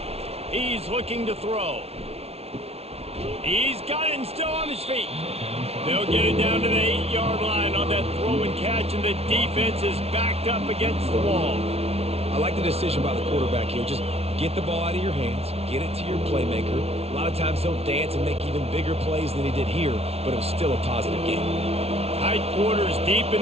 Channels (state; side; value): late; left; 0.30 ms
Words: He's looking to throw. He's got it and still on his feet. They'll get it down to the 8-yard line on that throw and catch, and the defense is backed up against the wall. I like the decision by the quarterback here. Just get the ball out of your hands, get it to your playmaker. A lot of times he'll dance and make even bigger plays than he did here, but it was still a positive game. Tight quarters deep